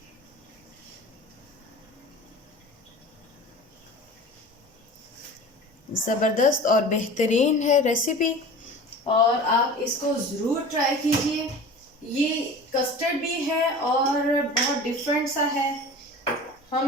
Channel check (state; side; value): normal; both; correlation 0.38